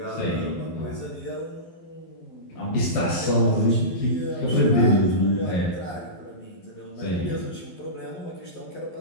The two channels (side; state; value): right; late; 12 ms